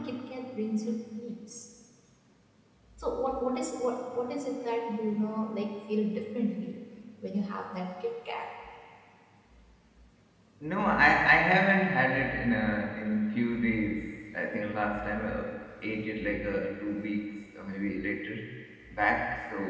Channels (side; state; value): both; identical; correlation 1.00